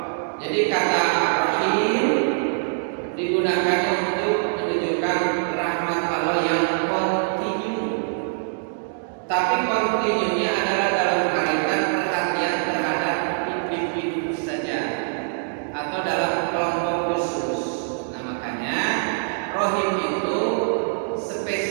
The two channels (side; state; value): left; silent; digital silence